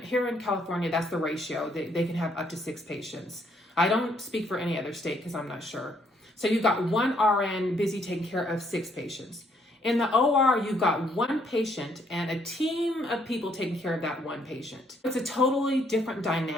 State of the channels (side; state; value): both; normal; correlation 0.69